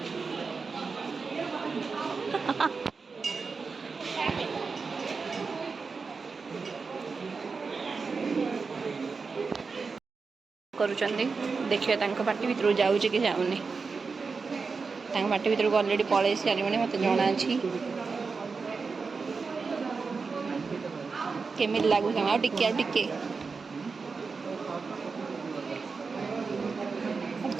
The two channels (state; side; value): quieter; left; 4.7 dB